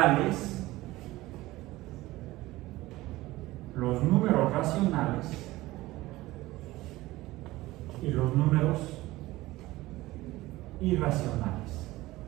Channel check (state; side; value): quieter; left; 18.3 dB